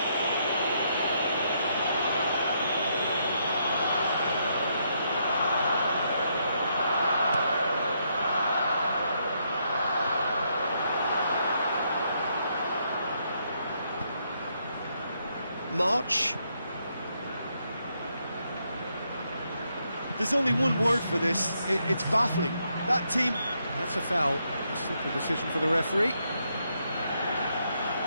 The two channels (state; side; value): inverted; both; correlation -0.76